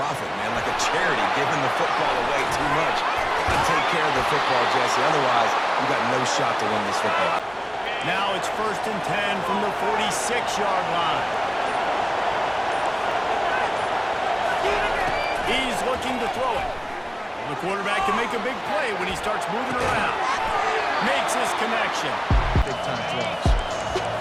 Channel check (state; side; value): identical; both; correlation 1.00